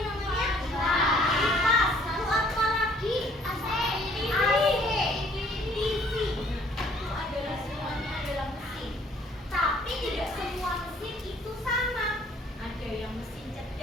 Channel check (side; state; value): both; normal; correlation 0.60